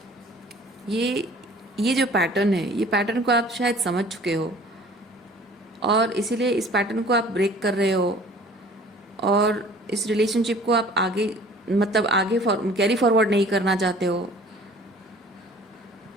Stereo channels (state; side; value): normal; both; correlation 0.49